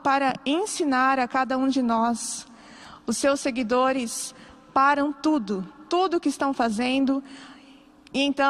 ensinar a cada um de nós, os seus seguidores param tudo o que estão fazendo, e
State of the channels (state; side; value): identical; both; correlation 1.00